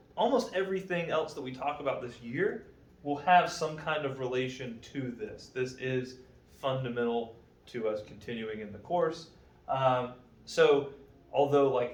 almost everything else that we talk about this year will have some kind of relation to this. This is fundamental to us continuing in the course. So although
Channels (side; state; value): both; identical; correlation 1.00